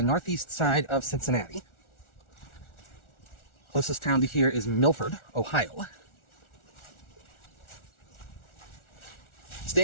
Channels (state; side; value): late; right; 1.4 ms